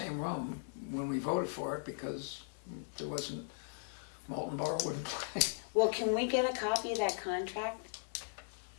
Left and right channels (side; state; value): right; silent; digital silence